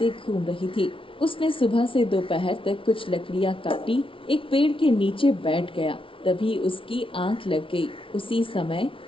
घूम रही थी। उसने सुबह से दोपहर तक कुछ लकड़ियां काटी, एक पेड़ के नीचे बैठ गया। तभी उसकी आंख लग गई। उसी समय,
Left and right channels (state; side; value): late; right; 0.25 ms